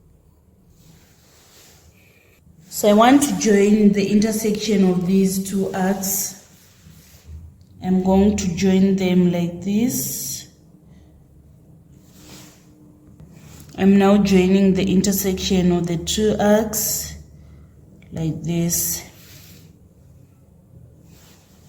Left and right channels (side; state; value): both; identical; correlation 1.00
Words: So I want to join the intersection of these two arcs. I'm going to join them like this. I'm now joining the intersection of the two arcs like this.